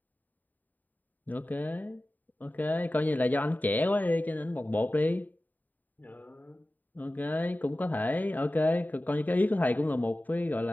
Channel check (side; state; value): right; late; 0.085 ms